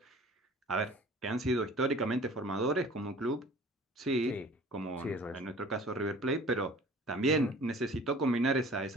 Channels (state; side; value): normal; both; correlation 0.47